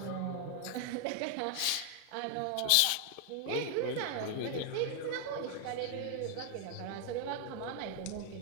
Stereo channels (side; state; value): both; different; correlation 0.00